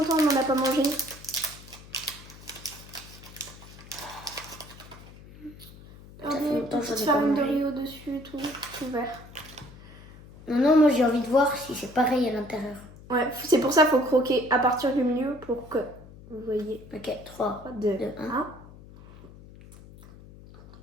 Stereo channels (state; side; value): noise; left; hum, 19 dB below the sound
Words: qu'on n'en a pas mangé. Ça fait Regardez, longtemps que j'en petite ai pas farine de mangé. riz au-dessus et tout vert. Non, moi j'ai envie de voir si c'est pareil à l'intérieur. Ouais, c'est pour ça qu'il faut croquer à partir du milieu pour que vous voyez. Ok, 3, 2, 2,